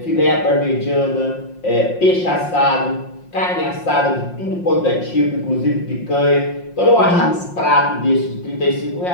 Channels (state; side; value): late; right; 5.6 ms